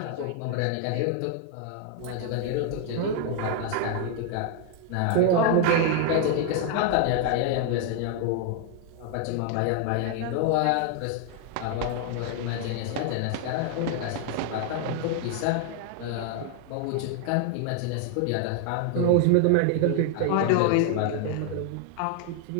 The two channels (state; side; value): different; both; correlation 0.00